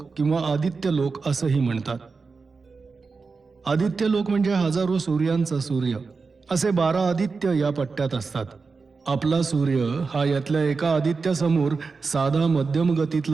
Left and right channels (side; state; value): left; quieter; 4.5 dB